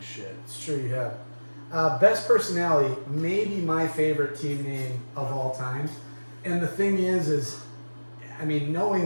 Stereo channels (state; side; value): inverted; both; correlation -1.00